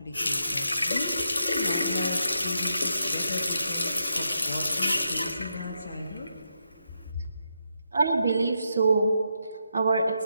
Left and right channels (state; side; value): inverted; both; correlation -0.82